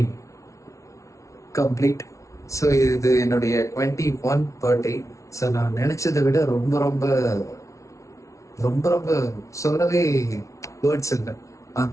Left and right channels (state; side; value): late; right; 0.15 ms